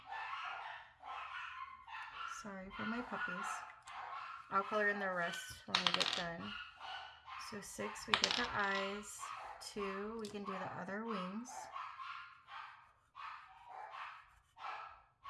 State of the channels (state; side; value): identical; both; correlation 1.00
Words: Sorry for my puppies. I'll color in the rest when we get done. So 6, we get the eyes. 2, we can do the other wings.